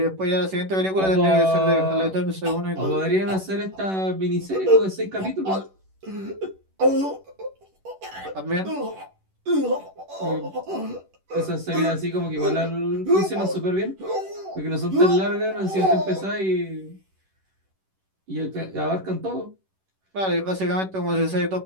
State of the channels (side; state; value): left; late; 11 ms